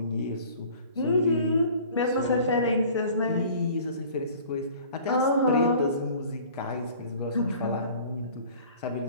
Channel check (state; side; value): inverted; both; correlation -0.48